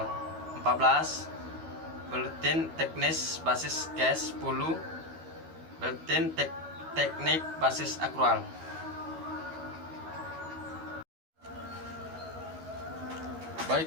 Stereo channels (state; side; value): late; left; 12 ms